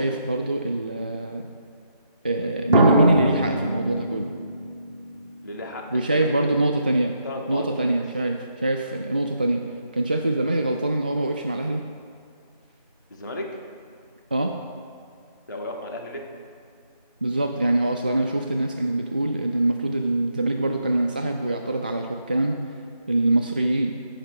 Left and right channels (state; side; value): inverted; both; correlation -0.79